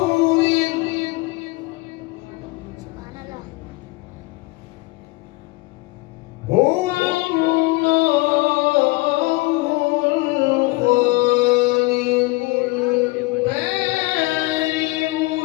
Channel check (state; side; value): quieter; right; 23.0 dB